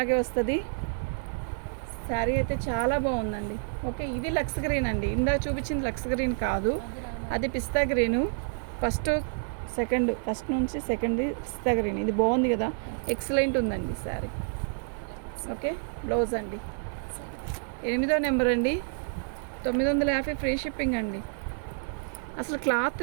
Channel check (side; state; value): left; silent; digital silence